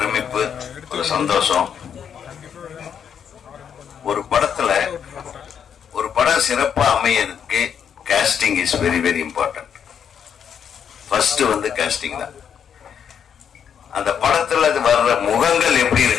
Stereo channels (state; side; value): quieter; right; 8.0 dB